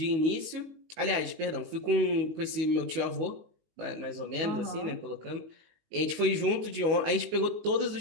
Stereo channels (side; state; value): left; late; 19 ms